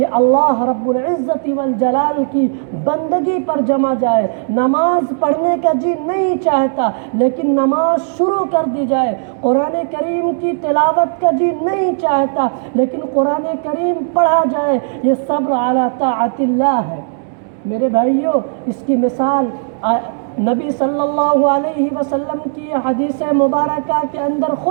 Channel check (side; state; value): left; silent; digital silence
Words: اللہ رب العزت والجلال کی بندگی پر جمع جائے، نماز پڑھنے کا جی نہیں چاہتا لیکن نماز شروع کر دی جائے، قرآن کریم کی تلاوت کا جی نہیں چاہتا لیکن قرآن کریم پڑھا جائے، یہ صبر علی طاعت اللہ ہے۔ میرے بھائیوں، اس کی مثال نبی صلی اللہ علیہ وسلم کی حدیث مبارکہ کے اندر